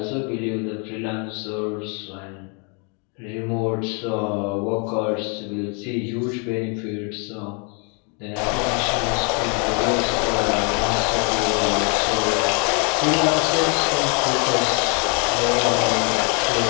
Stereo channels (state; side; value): quieter; right; 35.8 dB